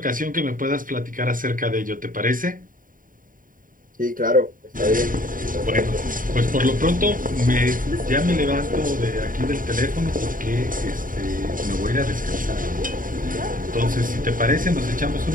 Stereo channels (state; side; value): late; left; 0.40 ms